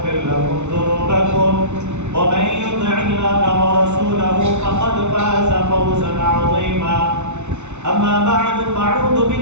لكم ذنوبكم ومن يطع الله ورسوله فقد فاز فوزا عظيما. أما بعد فأعوذ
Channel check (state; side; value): late; left; 0.82 ms